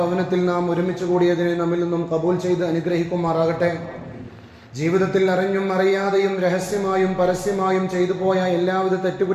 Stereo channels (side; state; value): both; identical; correlation 1.00